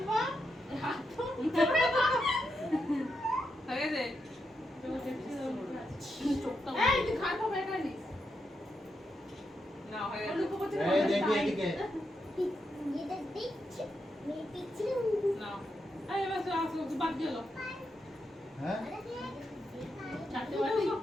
হাত তো হয়ে দে চোখটা এই তুই খাট হবে এটা নি না হয়ে গেল এই দেখি এদিকে এটা দেখছি মেয়ে পিছনে না এই এবার তো আসো তুই বাদ গেল হ্যাঁ চারটে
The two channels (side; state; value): both; normal; correlation 0.84